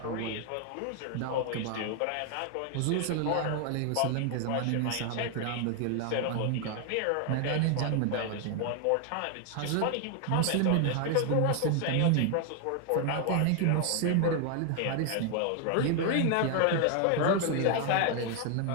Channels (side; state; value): both; different; correlation 0.00